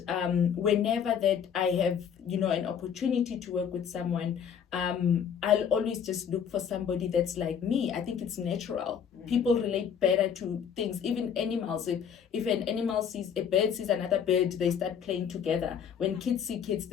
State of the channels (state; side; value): quieter; right; 7.8 dB